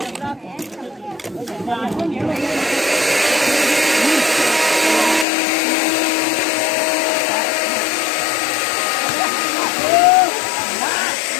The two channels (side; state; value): right; drops out; at 5.2 s